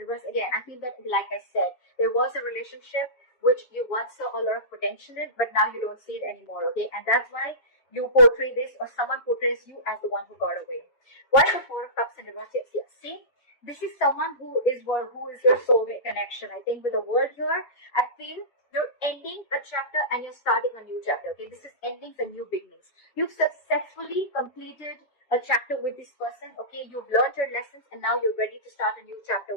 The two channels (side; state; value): right; late; 7.3 ms